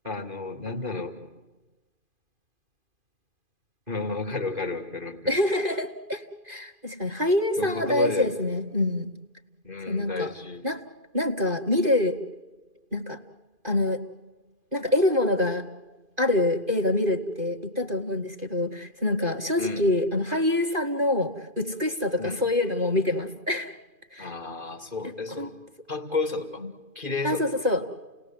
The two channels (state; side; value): late; left; 2.5 ms